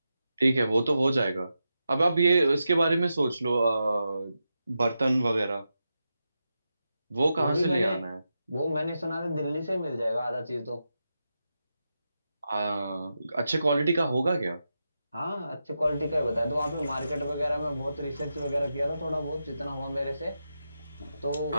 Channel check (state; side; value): inverted; both; correlation -0.89